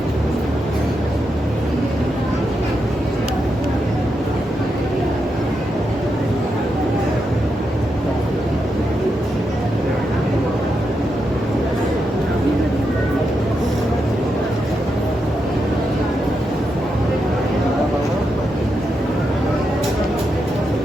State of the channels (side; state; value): both; normal; correlation 0.85